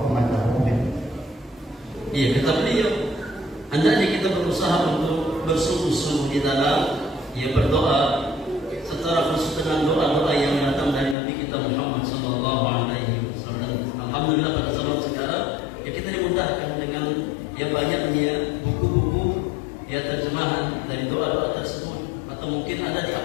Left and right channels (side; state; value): right; drops out; at 11.2 s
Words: أمته منه. Iya, kata beliau, hendaknya kita berusaha untuk bersungguh-sungguh di dalam berdoa secara khusus dengan doa-doa yang datang dari Nabi kita Muhammad sallallahu alaihi wasallam. Alhamdulillah pada zaman sekarang kita dimudahkan dengan banyaknya buku-buku terjemahan dari doa-doa tersebut, atau mungkin ada di